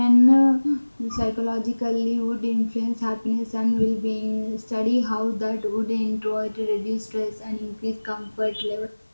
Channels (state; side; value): inverted; both; correlation -1.00